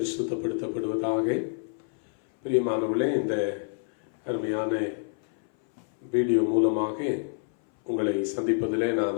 பிரியமானவர்களே, இந்த அருமையான வீடியோ மூலமாக உங்களை சந்திப்பதிலே நான்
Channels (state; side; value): silent; right; 58 dB below the other